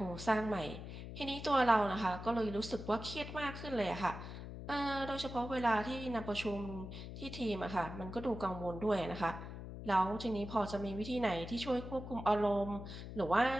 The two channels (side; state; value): left; noise; hum, 9 dB below the sound